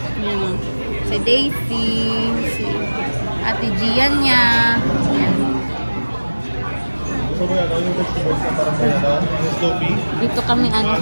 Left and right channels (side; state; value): both; inverted; correlation -1.00